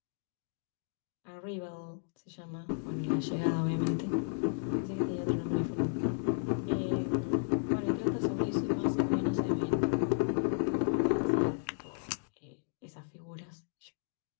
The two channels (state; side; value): silent; right; digital silence